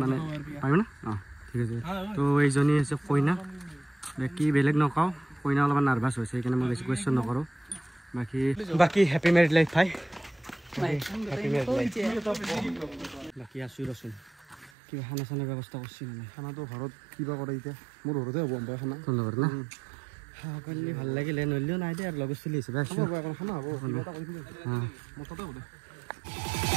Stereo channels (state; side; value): drops out; left; at 14.7 s